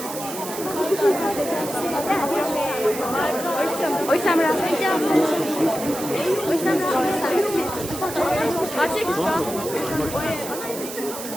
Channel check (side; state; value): right; noise; hiss, 10 dB below the sound